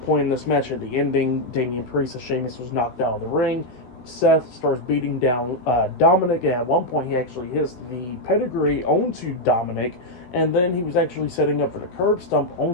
in this match, at the ending, Damian Priest and Sheamus was knocked out of the ring. Seth starts beating down Dominik, and at one point he actually hits the pedigree onto Dominik, and then he was actually setting up for the curb stomp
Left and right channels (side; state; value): right; late; 16 ms